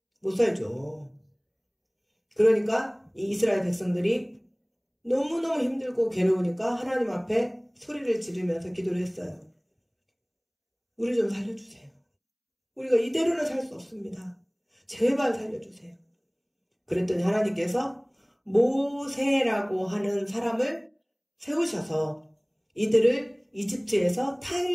못 살죠. 그러니까 이 이스라엘 백성들이 너무너무 힘들고 괴로우니까 하나님 앞에 소리를 지르면서 기도를 했어요. 우리 좀 살려주세요. 우리가 이대로는 살 수 없습니다. 제발 살려주세요. 그랬더니 하나님께서 모세라고 하는 사람을 세우셔서 이들을 이집트에서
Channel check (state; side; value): identical; both; correlation 1.00